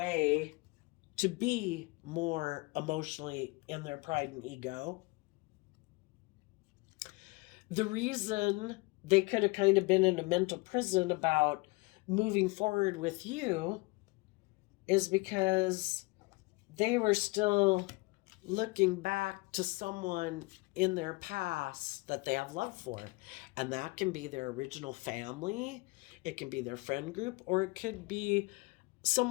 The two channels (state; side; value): quieter; right; 25.3 dB